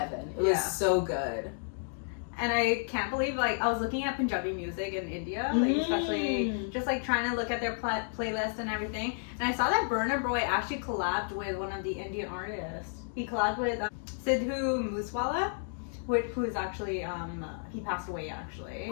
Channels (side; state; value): right; silent; digital silence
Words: It was so good. And I can't believe, like, I was looking at Punjabi music in India, like, especially just, like, trying to look at their playlist and everything. And I saw that Burna Boy actually collabed with one of the Indian artists. He collabed with Sidhu Moosewala, who's actually, he passed away, actually,